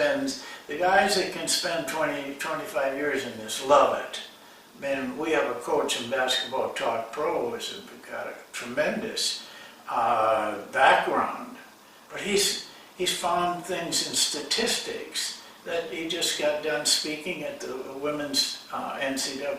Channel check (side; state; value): both; identical; correlation 1.00